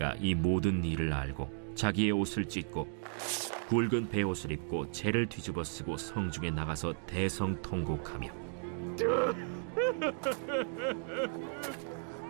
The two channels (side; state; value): left; silent; 55 dB below the other